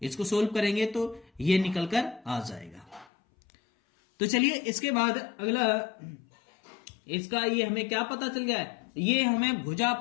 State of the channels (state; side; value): drops out; right; at 3.1 s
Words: इसको सोल्व करेंगे तो ये निकल कर आ जाएगा। तो चलिए इसके बाद अगला, इसका ये हमें क्या पता चल गया है, ये हमें भुजा